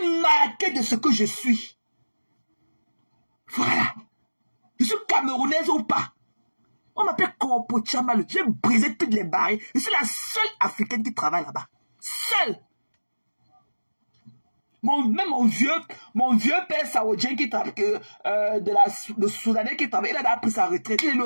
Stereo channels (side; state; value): both; inverted; correlation -1.00